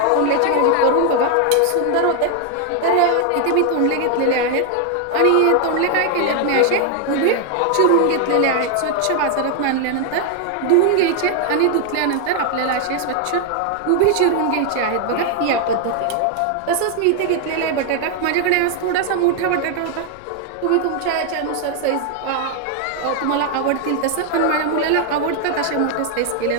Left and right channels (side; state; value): both; different; correlation 0.00